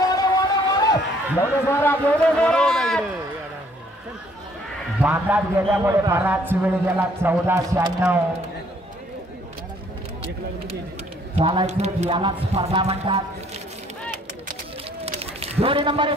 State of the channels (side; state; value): both; normal; correlation 0.62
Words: बांधात गेल्यामुळे बराच वेळ गेला. 14-96 चालायचं यालाच स्पर्धा म्हणतात. जोडी नंबर